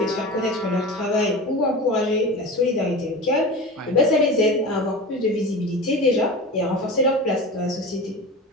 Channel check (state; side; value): normal; both; correlation 0.30